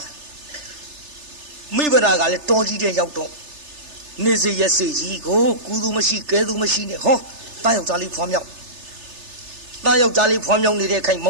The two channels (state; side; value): late; left; 3.3 ms